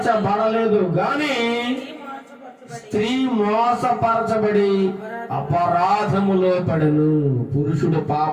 గాని స్త్రీ మోసపరచబడి అపరాధములో పడెను. పురుషుడు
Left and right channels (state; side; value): identical; both; correlation 1.00